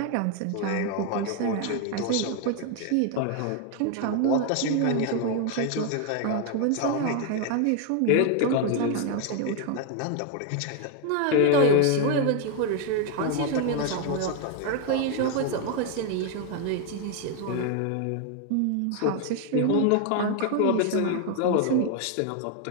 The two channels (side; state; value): both; different; correlation 0.00